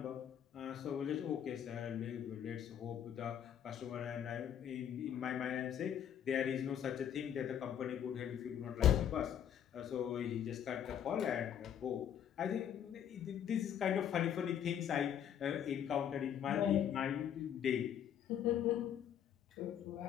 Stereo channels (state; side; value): quieter; right; 9.4 dB